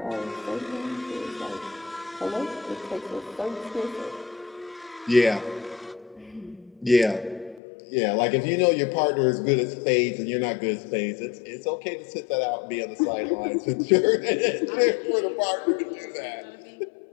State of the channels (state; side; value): drops out; right; at 7.6 s